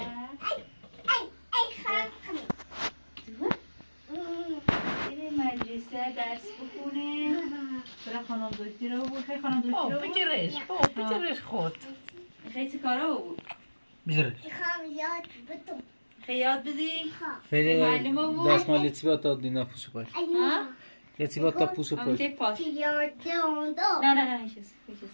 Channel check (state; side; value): inverted; both; correlation -1.00